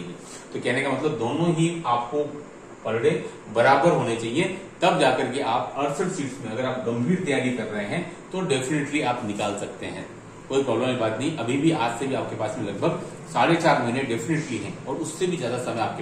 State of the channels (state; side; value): identical; both; correlation 1.00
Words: तो कहने का मतलब दोनों ही आपको पर डे बराबर होने चाहिए, तब जाकर के आप 68 सीट्स में अगर आप गंभीर तैयारी कर रहे हैं तो डेफिनेटली आप निकाल सकते हैं, कोई प्रॉब्लम की बात नहीं। अभी भी आज से भी आपके पास में लगभग 4.5 महीने डेफिनेटली हैं, और उससे भी ज्यादा समय